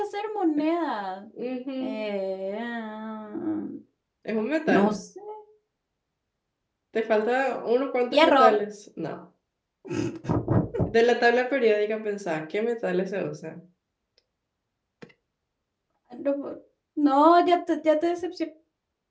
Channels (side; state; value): both; identical; correlation 1.00